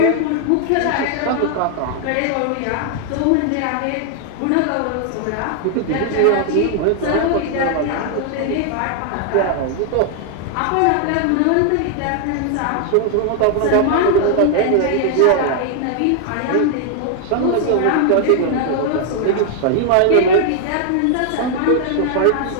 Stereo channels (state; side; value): different; both; correlation 0.00